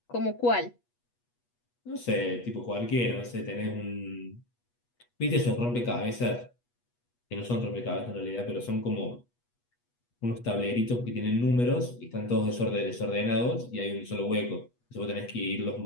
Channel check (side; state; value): right; late; 8.3 ms